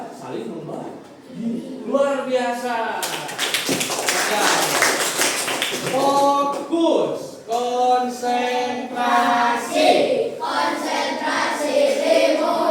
saling membagi. Luar biasa. Fokus, konsentrasi.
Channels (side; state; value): both; identical; correlation 1.00